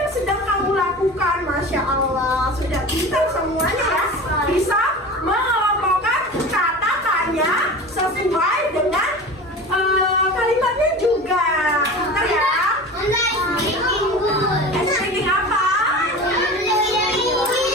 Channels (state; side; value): normal; both; correlation 0.34